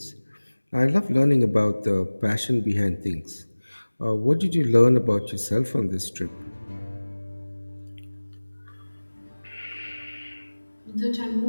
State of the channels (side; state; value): both; inverted; correlation -1.00